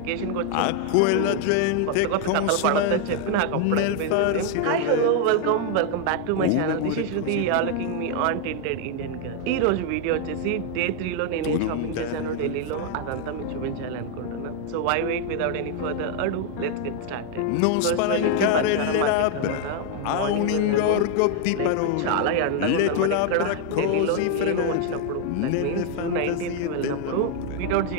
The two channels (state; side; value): different; both; correlation 0.00